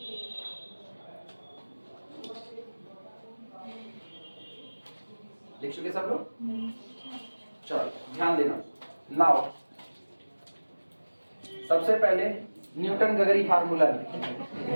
लिख चुके सब लोग? चलो ध्यान देना। नाउ सबसे पहले न्यूटन गगरी फार्मूला लिखें।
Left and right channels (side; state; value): both; inverted; correlation -1.00